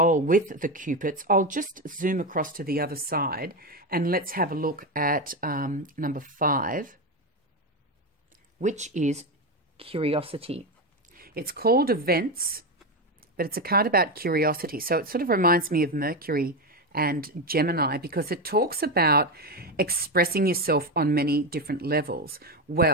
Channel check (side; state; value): both; normal; correlation 0.13